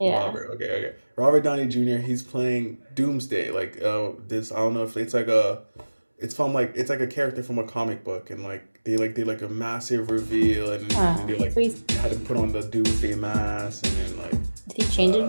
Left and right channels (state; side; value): inverted; both; correlation -1.00